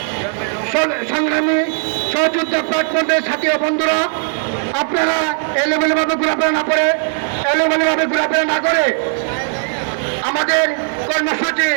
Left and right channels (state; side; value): silent; left; 57 dB below the other